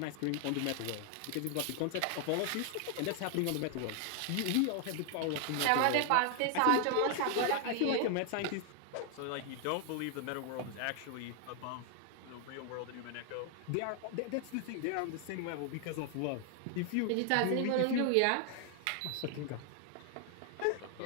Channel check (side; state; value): both; different; correlation 0.00